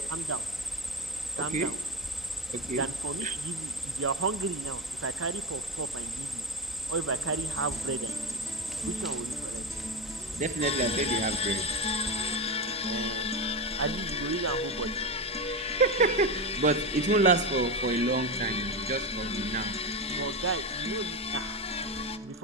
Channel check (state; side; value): normal; both; correlation 0.17